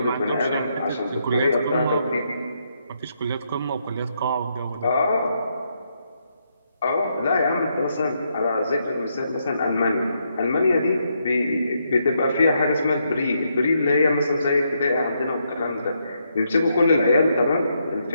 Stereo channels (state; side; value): inverted; both; correlation -0.78